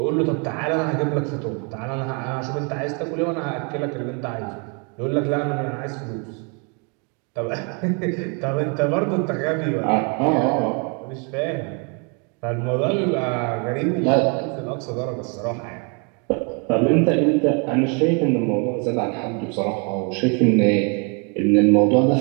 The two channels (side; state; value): left; quieter; 35.6 dB